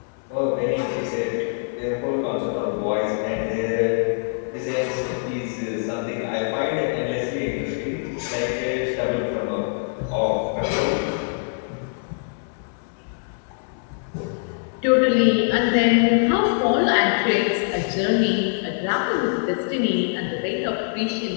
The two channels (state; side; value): silent; right; digital silence